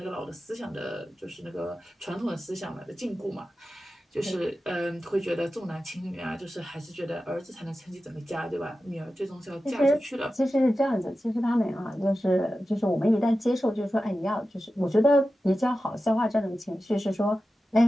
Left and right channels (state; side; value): normal; both; correlation 0.93